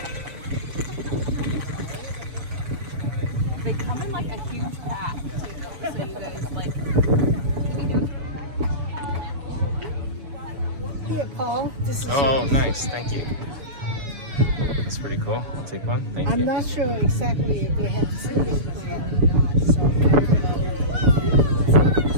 They come in like a huge pack too, so you guys like. Here, Paul. This is Oh, nice. Thank you. That's pretty cool. I'll take one. Thank you. I'm not sure exactly if they have seating plan or not, so I don't know.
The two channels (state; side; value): late; left; 7.0 ms